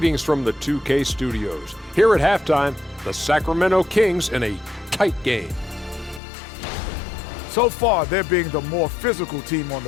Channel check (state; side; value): drops out; right; at 6.2 s